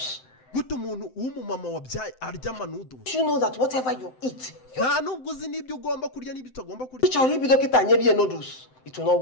Guto umuntu w'umumama wabyaye arya noodles. You know that whatever you eat. Nta nubwo uzi n'ibyo ugomba kurya n'ibyo utagomba kurya. Cyari bidokita nyebiye noodles. It will not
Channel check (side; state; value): right; late; 7.8 ms